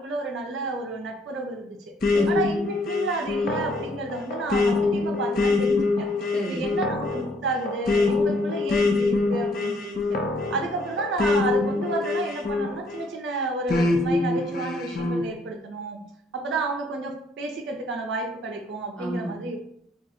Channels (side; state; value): both; normal; correlation 0.65